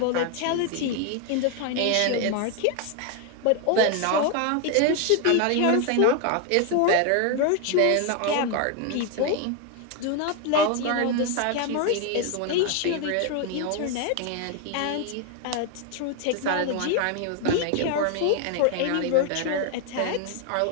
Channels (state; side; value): different; both; correlation 0.01